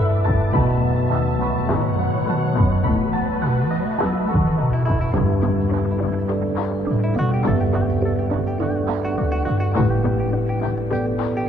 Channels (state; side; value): normal; both; correlation 0.73